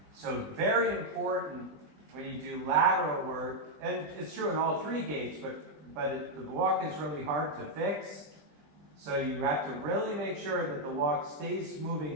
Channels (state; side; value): late; left; 20 ms